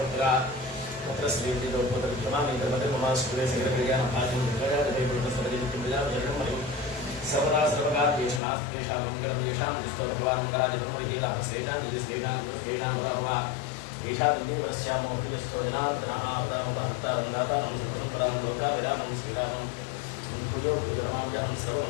तत्र श्रीविद्योपतविक्रमामि कर्मते ममाश्कुले सकलकल्याणभाजं विक्रयादिवैकुण्ठसरजिविक्रमजावजरणमयं सर्वदा सर्वकार्येषु नास्तेषां मङ्गलं येषां दिस्तो भगवान्मङ्गलादिब्रह्मविहीलाभसेनां निजस्तेषां दुष्टेषां प्रभवा येषां दिव्यमनस्यामो हृदयस्थो जनार्दनः आपदामुपहर्तारन्दातारं सर्वपरां लोकाभिरामं श्रीरामं पूजो पूजनमाम्यहं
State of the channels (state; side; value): drops out; right; at 8.4 s